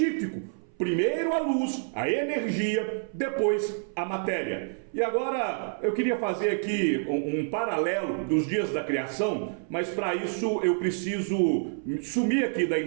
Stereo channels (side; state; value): left; silent; 58 dB below the other